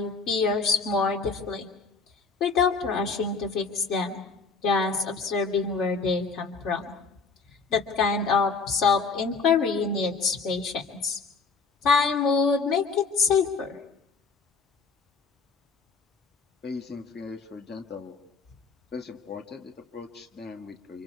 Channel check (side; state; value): right; quieter; 4.7 dB